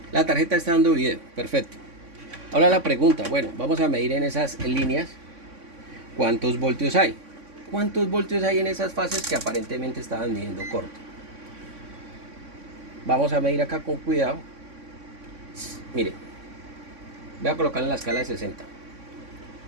La tarjeta está dando video, perfecto. Ahora la pregunta, bueno, vamos a medir en esas líneas cuántos voltios hay. ¿Cuántos voltios hay en esas fases que aparentemente estaban midiendo corto? Vamos a medir acá con cuidado. Mire, voy a colocar en la escala de 60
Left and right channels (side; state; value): left; late; 3.6 ms